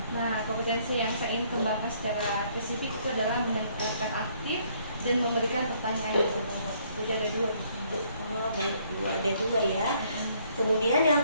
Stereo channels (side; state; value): both; inverted; correlation -0.65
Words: Nah, kompetensi yang saya ingin kembangkan secara spesifik itu adalah mendengarkan aktif dan memberikan pertanyaan yang berbobot. Jadi ada dua. Oh, baik Bu, ada dua ya. Kemudian yang